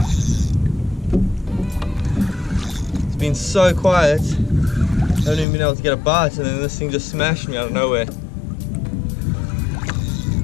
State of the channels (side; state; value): right; drops out; at 5.5 s